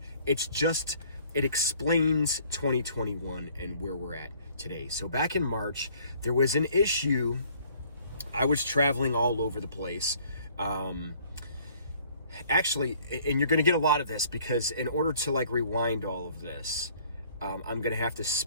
It's just, it explains 2021 and where we're at today. So back in March, there was an issue. I was traveling all over the place. Actually, and you're going to get a lot of this because in order to rewind all of this, I'm going to have to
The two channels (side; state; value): both; inverted; correlation -0.58